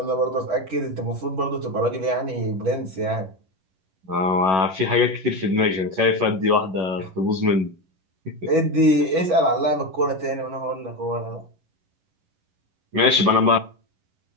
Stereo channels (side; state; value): left; late; 11 ms